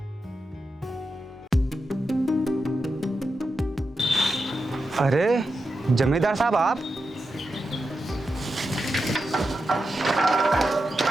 अरे जमींदार साहब, आप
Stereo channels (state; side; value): normal; both; correlation 0.88